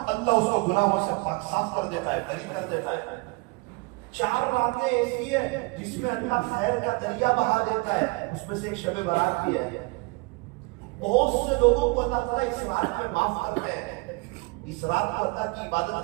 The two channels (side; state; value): left; quieter; 27.1 dB